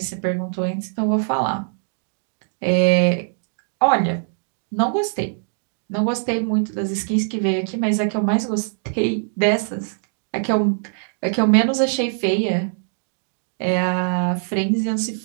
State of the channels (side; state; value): left; silent; digital silence